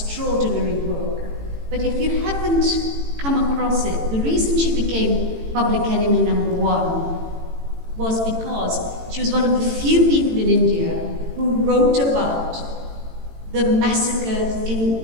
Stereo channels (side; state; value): left; late; 18 ms